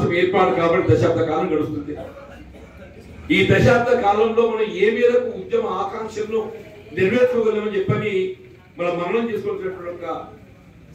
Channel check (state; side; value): identical; both; correlation 1.00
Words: ఏర్పాటు కాబట్టి దశాబ్ద కాలం గడుస్తుంది. ఈ దశాబ్ద కాలంలో మనం ఏ మేరకు ఉద్యమ ఆకాంక్షలను నెరవేర్చుకోగలమని చెప్పని మనం మననం చేసుకోవాల్సినటువంటి ఒక